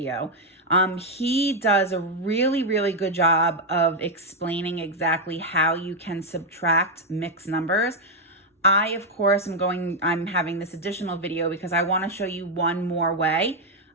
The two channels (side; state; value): both; normal; correlation 0.01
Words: He does a really good job of explaining exactly how you can subtract mixed numbers. I, of course, I'm having this additional video because I want to show you one more way.